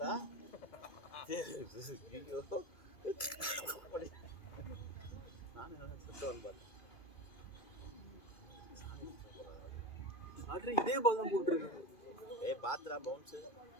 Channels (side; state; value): right; late; 2.3 ms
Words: நானும் சுத்தவன் பார்த்தேன். இதே பால் தான் போட்டுருக்கு. பாத்ரா பவுன்ஸு